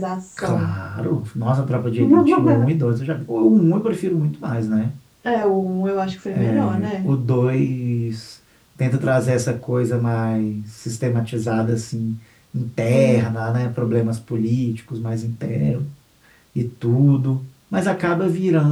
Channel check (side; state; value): both; identical; correlation 1.00